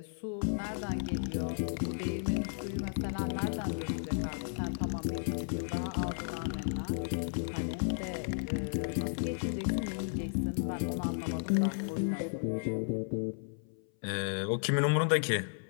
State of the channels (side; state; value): right; silent; 55 dB below the other